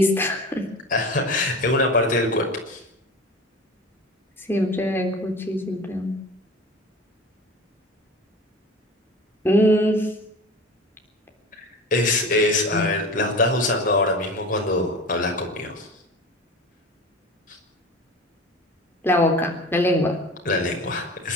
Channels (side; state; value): both; normal; correlation 0.35